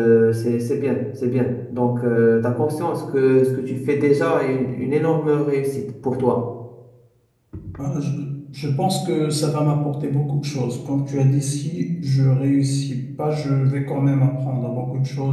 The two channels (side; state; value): both; identical; correlation 1.00